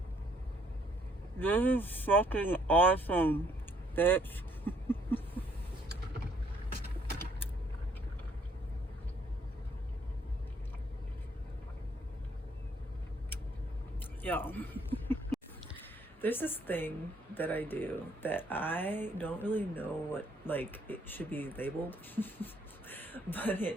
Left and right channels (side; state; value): both; normal; correlation 0.66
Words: This is fucking awesome, bitch. Yo. There's this thing that I do that I don't really know what, like, it should be labeled. But